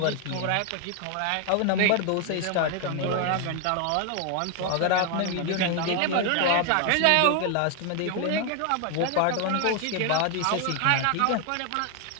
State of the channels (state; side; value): different; both; correlation 0.00